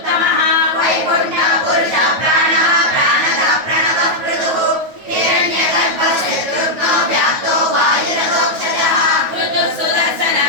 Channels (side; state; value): left; late; 9.2 ms